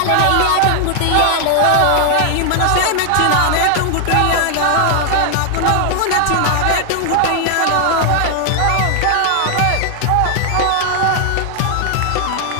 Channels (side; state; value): both; different; correlation 0.00